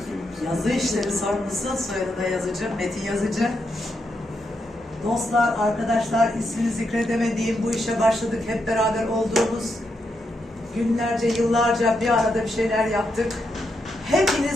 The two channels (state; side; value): normal; both; correlation 0.82